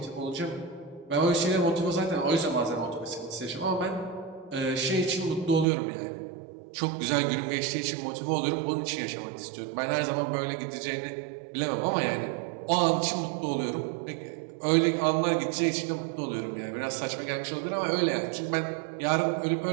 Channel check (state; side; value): drops out; left; at 5.7 s